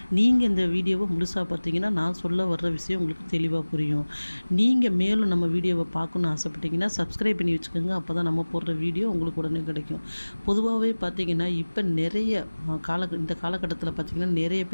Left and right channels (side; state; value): both; inverted; correlation -1.00